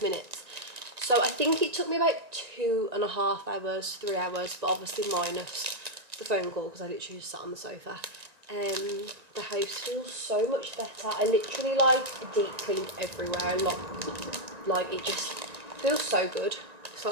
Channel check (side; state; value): left; late; 1.9 ms